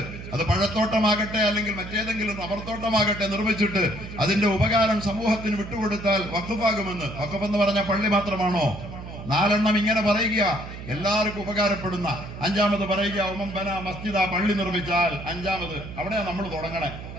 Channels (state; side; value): noise; right; hum, 11 dB below the sound